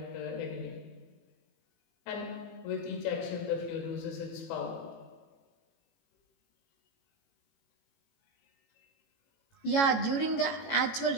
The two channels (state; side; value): late; right; 18 ms